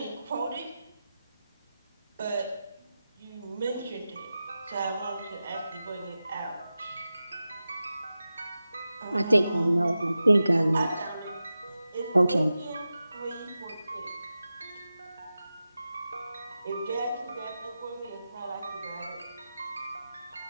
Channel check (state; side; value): inverted; both; correlation -0.93